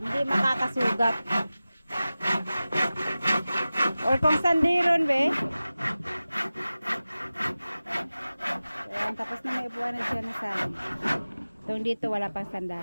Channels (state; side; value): inverted; both; correlation -0.96